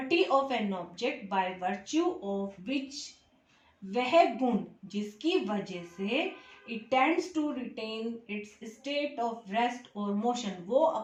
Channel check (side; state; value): both; identical; correlation 1.00